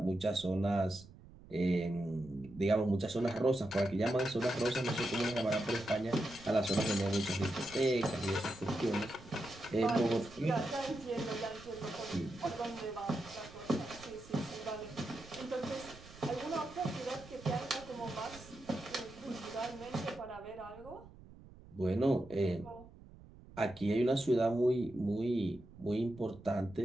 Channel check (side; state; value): right; noise; rumble, 20 dB below the sound